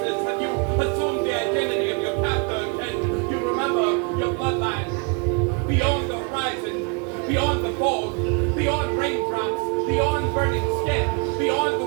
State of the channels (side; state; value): left; quieter; 33.8 dB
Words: Have you assumed the identity of your captor? Can you remember your bloodline? Beyond the horizon, beyond the fog, beyond raindrops, beyond burning skin, beyond the